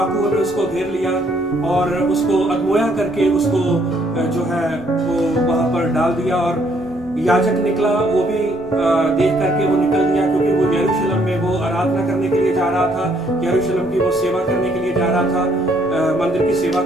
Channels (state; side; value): normal; both; correlation 0.67